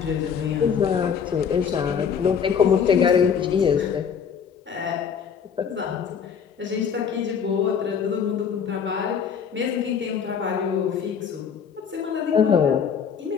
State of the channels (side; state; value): right; quieter; 7.0 dB